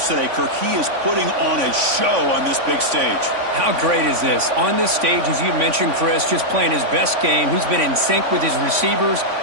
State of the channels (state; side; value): late; left; 3.5 ms